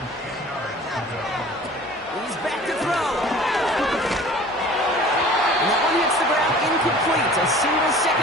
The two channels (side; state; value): both; normal; correlation 0.45